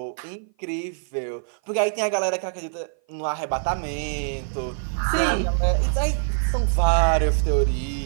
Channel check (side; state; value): left; silent; 56 dB below the other